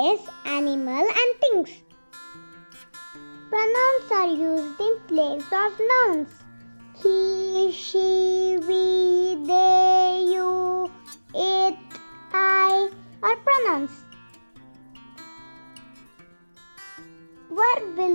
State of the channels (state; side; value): inverted; both; correlation -1.00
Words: animal and things. Pronouns are used in place of nouns. He, she, we, they, you, it, I are pronouns. Verb